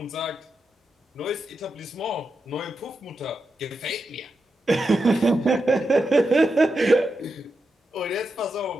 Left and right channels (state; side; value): normal; both; correlation 0.87